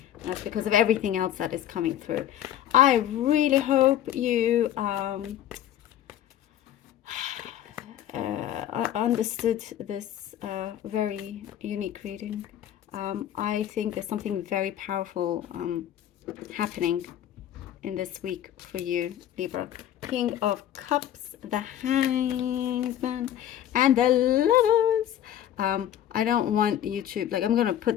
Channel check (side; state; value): right; quieter; 11.3 dB